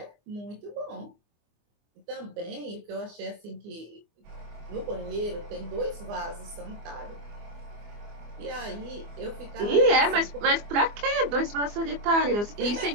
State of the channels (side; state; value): left; late; 24 ms